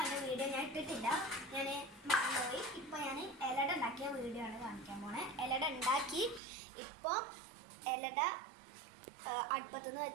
വീഡിയോ ഞാൻ ഇട്ടിട്ടില്ല, ഞാൻ മറന്നുപോയി. ഇപ്പോൾ ഞാൻ ഇലട ഉണ്ടാക്കിയ വീഡിയോ ആണ് കാണിക്കാൻ പോണേ. ഇലട ഉണ്ടാക്കി ഇപ്പോൾ ഇലട അടുപ്പത്തുനിന്ന്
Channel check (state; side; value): drops out; left; at 6.4 s